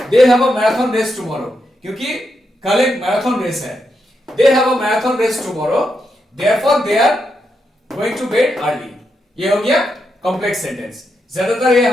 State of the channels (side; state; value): both; normal; correlation 0.83